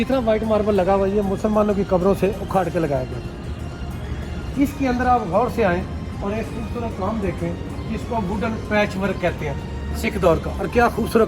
वाइट मार्बल लगा हुआ है ये मुसलमानों की कब्रों से उखाड़ के लगाया गया था। इसके अंदर आप गौर से आएँ और एक खूबसूरत काम देखें, जिसको वुडन पैच वर्क कहते हैं, सिख दौर का। और क्या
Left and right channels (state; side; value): identical; both; correlation 1.00